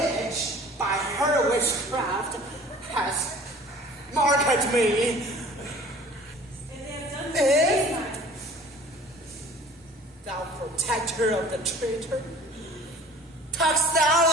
by her witchcraft, has marked me. And they have done this time. Thou protector of the traitor, talkest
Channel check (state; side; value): normal; both; correlation 0.47